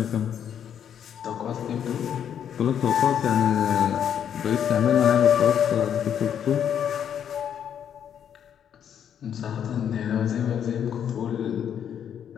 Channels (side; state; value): right; quieter; 8.9 dB